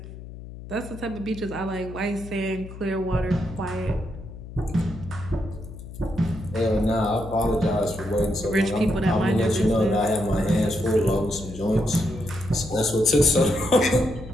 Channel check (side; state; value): left; noise; hum, 13 dB below the sound